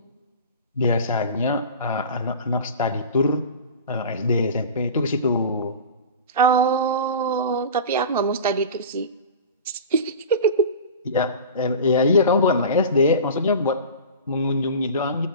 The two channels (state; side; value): inverted; both; correlation -0.34